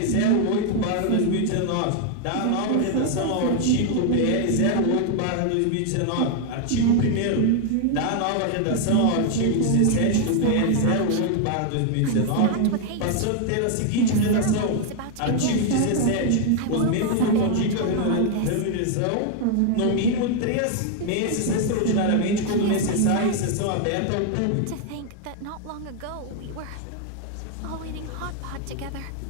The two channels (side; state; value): both; different; correlation 0.00